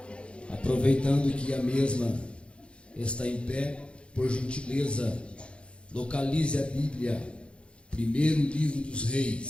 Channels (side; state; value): right; late; 0.058 ms